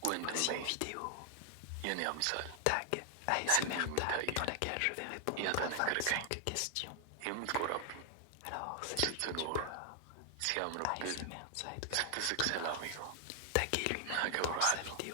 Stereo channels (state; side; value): different; both; correlation 0.00